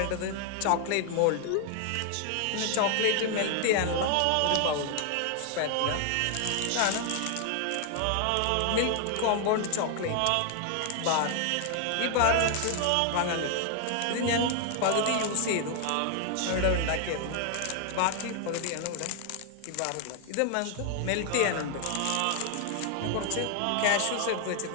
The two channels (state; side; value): different; both; correlation 0.00